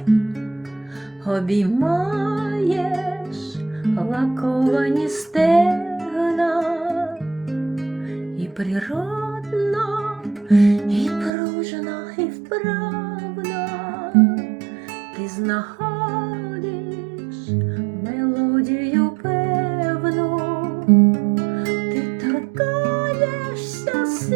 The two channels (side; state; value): left; drops out; at 11.3 s